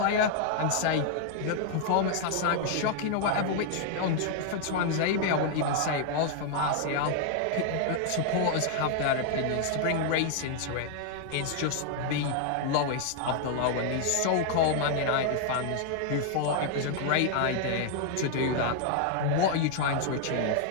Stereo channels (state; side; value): different; both; correlation 0.00